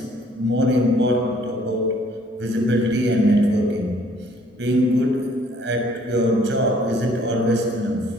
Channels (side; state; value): both; normal; correlation 0.60